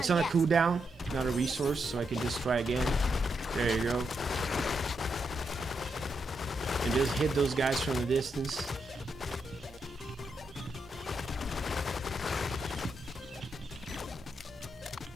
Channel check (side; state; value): both; normal; correlation 0.82